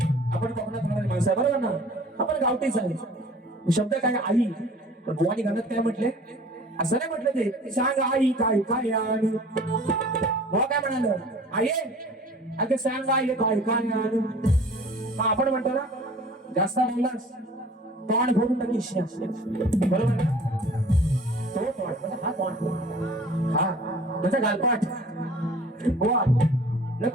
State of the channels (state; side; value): normal; both; correlation 0.47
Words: आपण कोकणात राहणारी माणसं आहे बरोबर ना, आपण गावठीच आहे. शब्द काय आई. पण गोवानी गाण्यात काय म्हटले, असं नाही म्हटलं ते सांग आई काय काय आणि बुवा काय म्हणाल आई अगं सांग आई काय काय आणि. आपण म्हणतो ना जास्त बोललास तोंड फोडून टाकीस बरोबर ना. तो तोंड हा तोंड हा म्हणजे गालपाट. बुवा